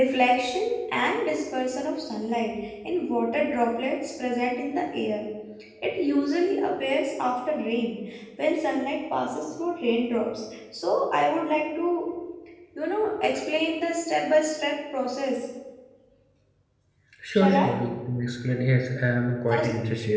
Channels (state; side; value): identical; both; correlation 1.00